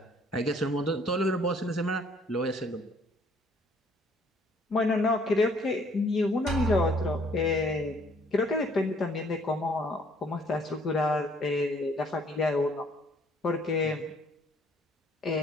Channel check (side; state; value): both; normal; correlation 0.61